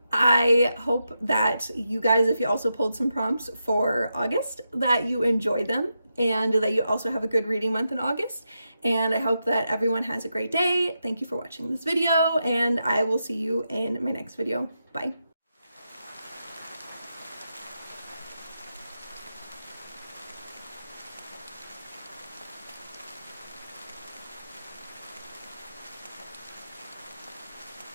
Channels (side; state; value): both; inverted; correlation -0.86